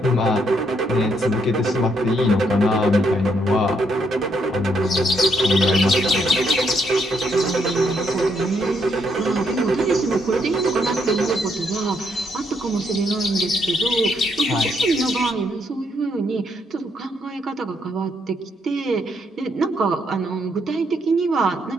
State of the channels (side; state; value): both; normal; correlation 0.74